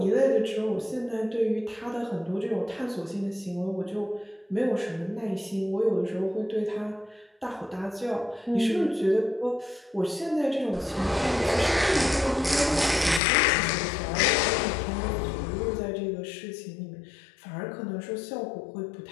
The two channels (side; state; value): right; drops out; at 13.2 s